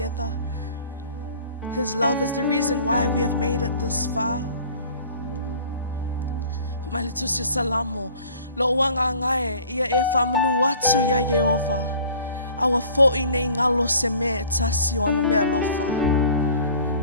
His love is the reason why we have made it this far. Maletusi salamo. Lo wanga ngai ia e whamanu atu ia Yehova. Awa fo'i nei ngalo se me tasi o ana mea lofa.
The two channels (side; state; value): both; inverted; correlation -0.49